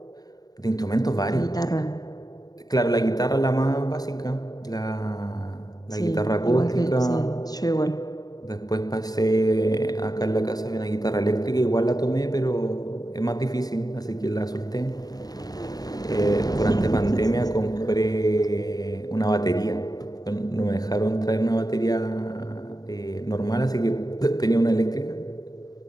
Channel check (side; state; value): right; late; 0.18 ms